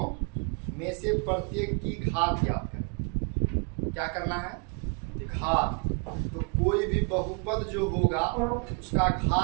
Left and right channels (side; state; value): left; quieter; 35.2 dB